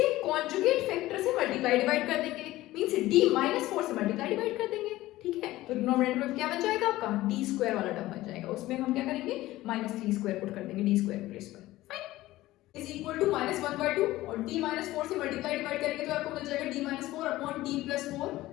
कॉन्जुगेट फैक्टर से मल्टीप्लाई डिवाइड कर देंगे, मींस d माइनस 4 से मल्टीप्लाई डिवाइड कर देंगे, ठीक है। तो डिनोमिनेटर में क्या बन जाएगा आपका, d स्क्वायर वाला टर्म बन जाएगा, उसमें हम क्या करेंगे, माइनस 3 स्क्वायर पुट कर देंगे d स्क्वायर प्लेस पर। Fine, is equal to minus 1/2 और d माइनस 4 से मल्टीप्लाई डिवाइड करेंगे तो आपको मिल जाएगा d minus 4 upon d plus 4,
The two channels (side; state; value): right; quieter; 16.8 dB